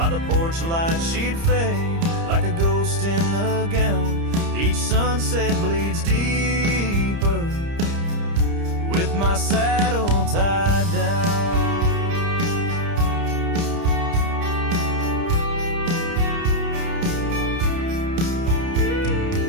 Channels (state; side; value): late; left; 30 ms